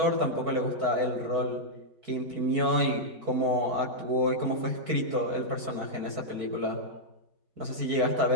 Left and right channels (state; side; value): late; left; 4.6 ms